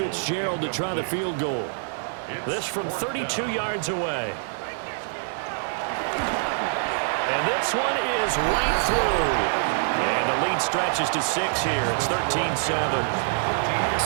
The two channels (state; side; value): silent; left; 62 dB below the other